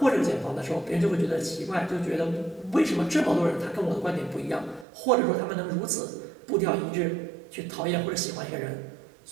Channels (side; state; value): left; drops out; at 4.9 s